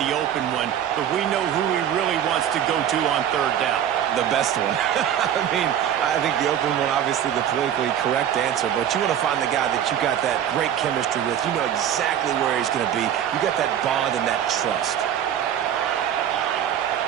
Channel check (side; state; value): left; quieter; 9.9 dB